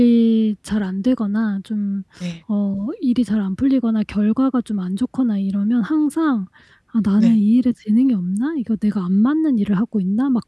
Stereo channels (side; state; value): both; identical; correlation 1.00